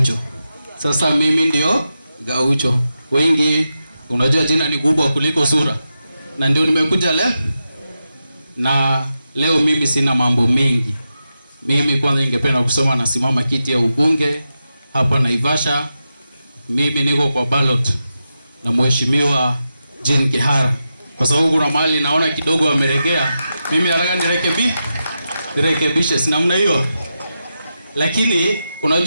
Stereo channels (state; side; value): inverted; both; correlation -0.89